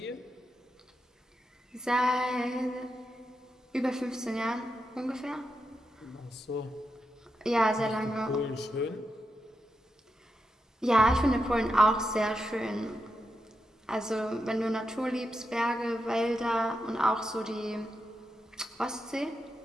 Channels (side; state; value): both; normal; correlation 0.87